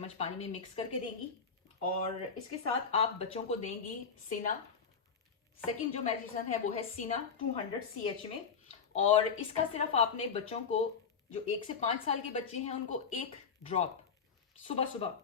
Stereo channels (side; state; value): right; quieter; 6.0 dB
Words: पानी में मिक्स करके देंगी। और इसके साथ आप बच्चों को देंगी सीना। सेकंड जो मेडिसिन है वो है सीना 200 CH में। और इसका सिर्फ आपने बच्चों को जो 1 से 5 साल के बच्चे हैं उनको 1 ड्रॉप सुबह